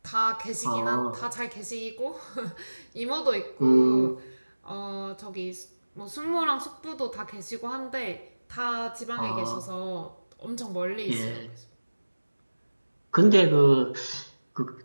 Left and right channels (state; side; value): inverted; both; correlation -1.00